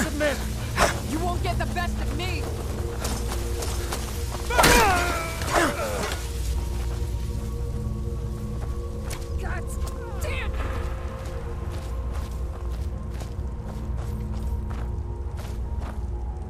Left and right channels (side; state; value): both; identical; correlation 1.00